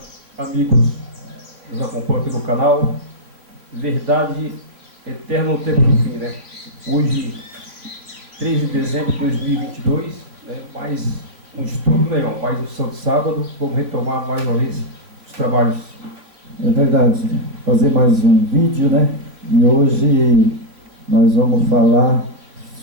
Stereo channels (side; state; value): left; late; 3.3 ms